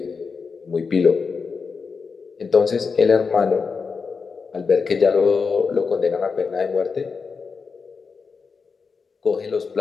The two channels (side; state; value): right; quieter; 5.2 dB